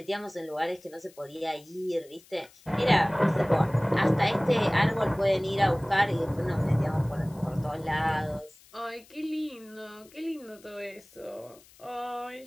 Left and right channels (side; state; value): left; noise; hiss, 26 dB below the sound